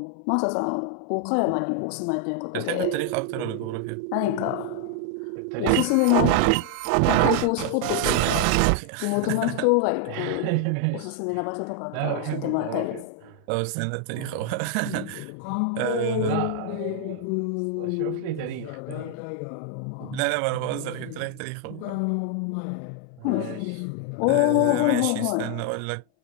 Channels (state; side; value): different; both; correlation 0.00